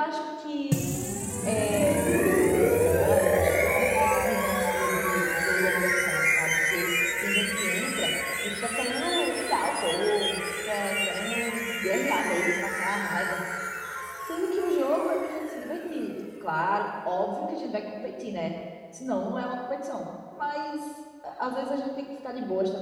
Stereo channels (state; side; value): identical; both; correlation 1.00